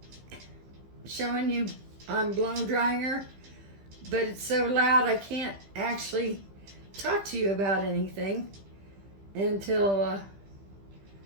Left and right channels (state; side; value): late; left; 15 ms